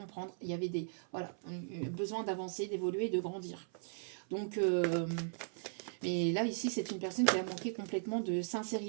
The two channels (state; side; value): silent; left; 53 dB below the other